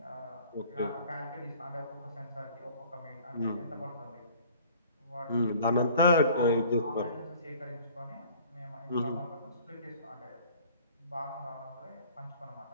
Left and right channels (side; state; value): both; inverted; correlation -0.51